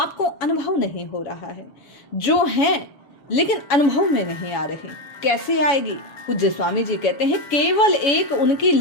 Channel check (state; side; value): late; right; 7.1 ms